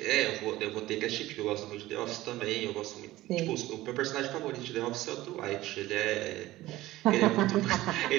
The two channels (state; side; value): quieter; left; 16.9 dB